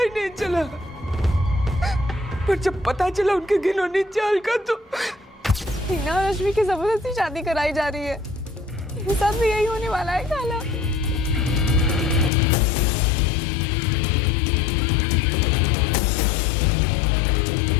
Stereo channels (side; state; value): right; drops out; at 12.3 s